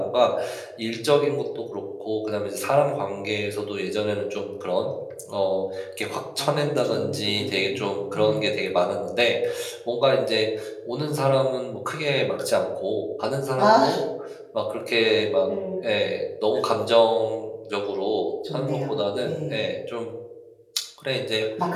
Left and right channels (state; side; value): identical; both; correlation 1.00